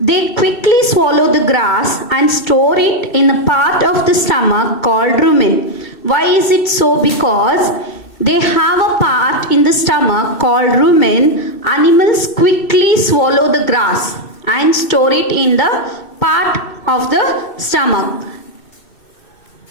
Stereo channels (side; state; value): right; late; 2.3 ms